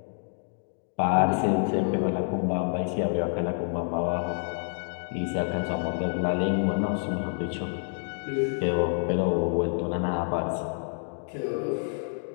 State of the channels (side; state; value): right; silent; 59 dB below the other